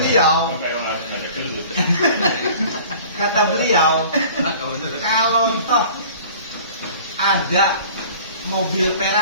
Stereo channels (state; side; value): inverted; both; correlation -0.46